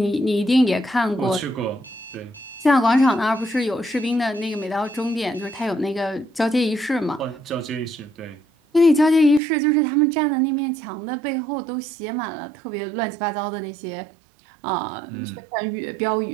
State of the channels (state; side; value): drops out; left; at 9.4 s